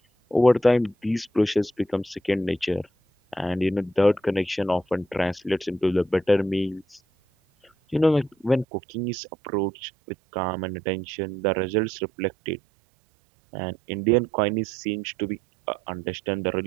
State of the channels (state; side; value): drops out; left; at 8.7 s